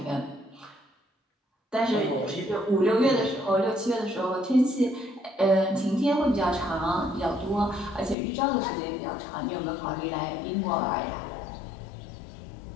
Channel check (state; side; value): drops out; right; at 8.2 s